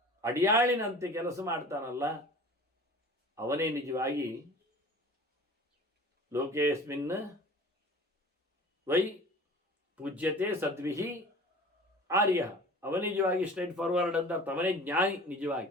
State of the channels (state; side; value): normal; both; correlation 0.42